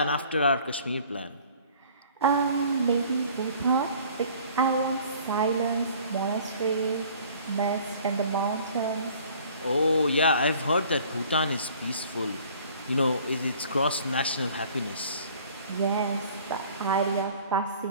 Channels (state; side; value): inverted; both; correlation -0.52